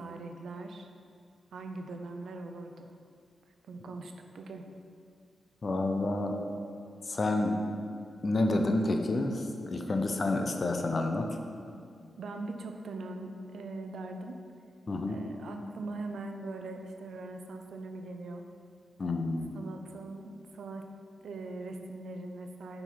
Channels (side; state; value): both; normal; correlation 0.88